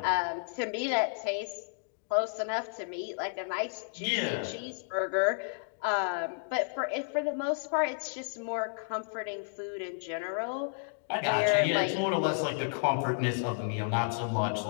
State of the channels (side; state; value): right; silent; digital silence